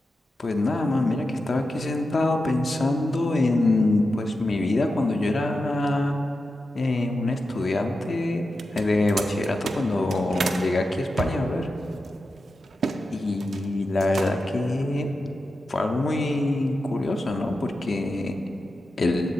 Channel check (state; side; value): normal; both; correlation 0.90